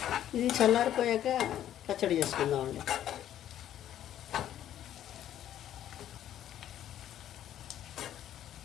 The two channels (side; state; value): right; quieter; 11.4 dB